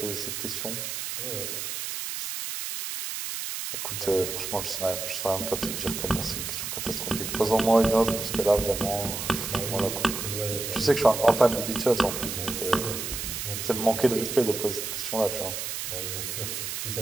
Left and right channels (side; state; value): right; noise; hiss, 4 dB below the sound